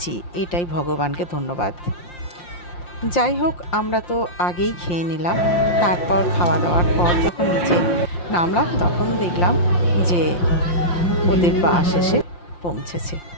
এটাই ভগবানকে ধন্যবাদ। যাই হোক, আমরা তো আগেই খেয়ে নিলাম। তারপর খাওয়া দাওয়ার পর যখন নিচে নামলাম তখন দেখলাম যে ওদের বাস এসে পৌঁছেছে।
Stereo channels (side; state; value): right; late; 5.7 ms